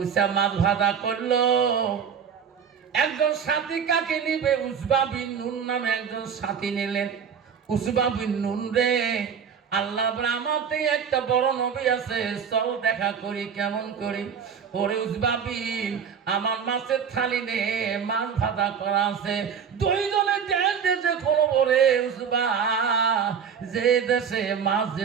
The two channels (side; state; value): left; quieter; 7.1 dB